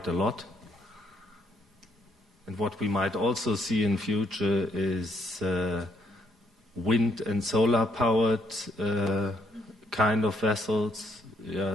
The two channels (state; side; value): normal; both; correlation 0.71